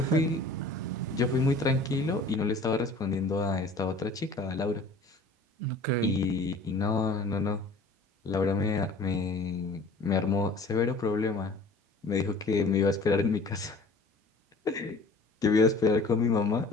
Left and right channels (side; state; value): right; quieter; 3.1 dB